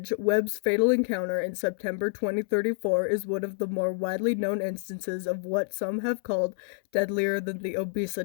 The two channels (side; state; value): right; silent; 59 dB below the other